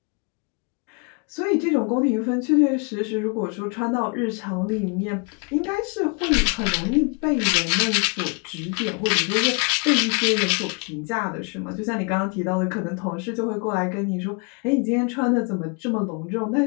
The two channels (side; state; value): right; quieter; 34.1 dB